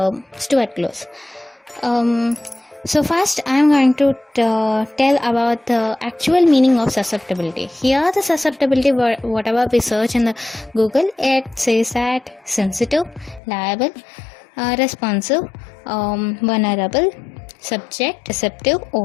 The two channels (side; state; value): right; drops out; at 13.4 s